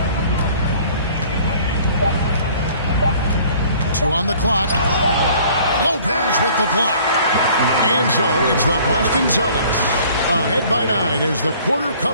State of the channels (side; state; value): both; inverted; correlation -0.53